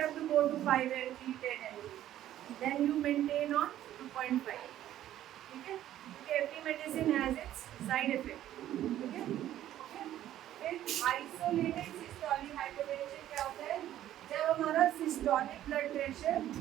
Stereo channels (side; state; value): left; quieter; 12.5 dB